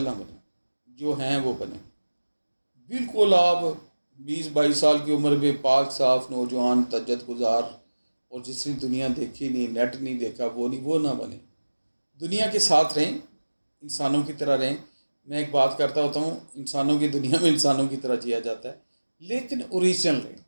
نہ بنیں، جو ہیں وہ بنیں. بالکل آپ 20-22 سال کی عمر میں پاک صاف نوجوان تجد گزار اور جس نے دنیا دیکھی نہیں، نیٹ نہیں دیکھا، وہ نہ بنے. دنیا کے ساتھ رہیں، انسانوں کی طرح رہیں. میں ایک بات کرتا ہوتا ہوں، انسانوں کی دنیا میں انسانوں کی طرح جیا جاتا ہے، لیکن اوریجنل رہیں.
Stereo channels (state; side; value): inverted; both; correlation -1.00